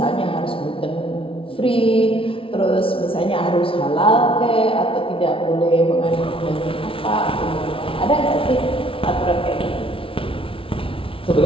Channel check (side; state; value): right; late; 0.26 ms